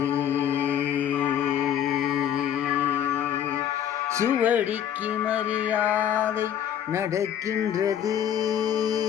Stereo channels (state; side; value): quieter; right; 10.0 dB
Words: சுவடிக்கு மரியாதை நடக்கின்றது.